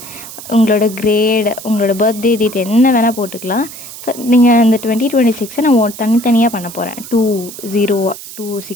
உங்களோட கிரேட், உங்களோட பர்த்டே டேட் என்ன வேணால் போட்டுக்கலாம். நீங்கள் இந்த 2026 நான் தனித்தனியாக பண்ண போகிறேன்.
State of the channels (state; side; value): noise; right; hiss, 14 dB below the sound